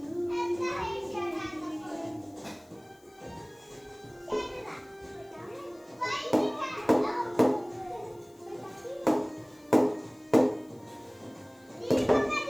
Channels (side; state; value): left; noise; hiss, 30 dB below the sound